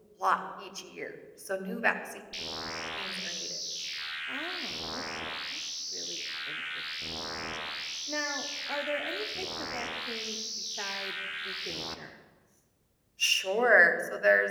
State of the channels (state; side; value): identical; both; correlation 1.00